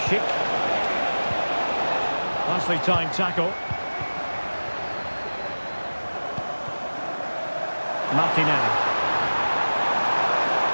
Schick. Nicely timed tackle. Martinelli.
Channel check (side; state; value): both; inverted; correlation -1.00